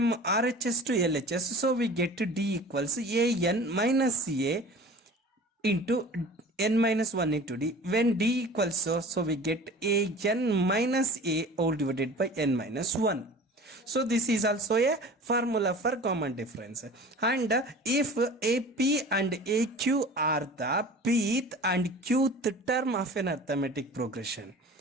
RHS to LHS, so we get d equals an minus a into n minus 1 into d. When d equals so we get an minus a all divided by n minus 1. So this is also a formula for common difference. And if AP and AQ are the pth and qth term of an arithmetic progression,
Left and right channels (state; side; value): normal; both; correlation 0.41